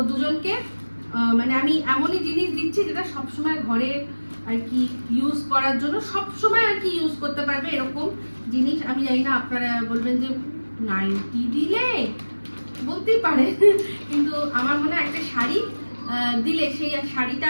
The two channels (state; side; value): inverted; both; correlation -1.00